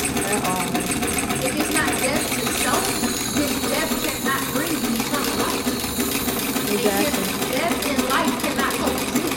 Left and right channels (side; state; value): both; identical; correlation 1.00